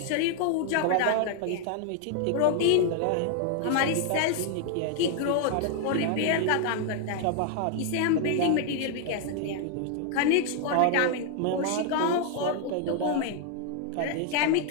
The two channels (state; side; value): different; both; correlation 0.00